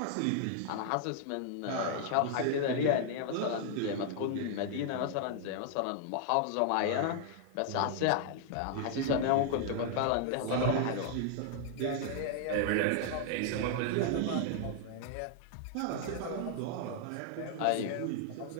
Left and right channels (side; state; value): both; different; correlation 0.00